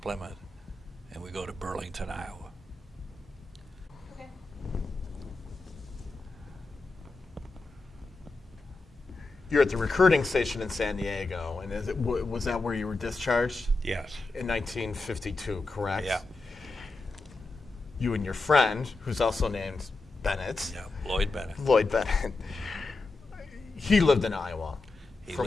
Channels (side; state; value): right; quieter; 3.4 dB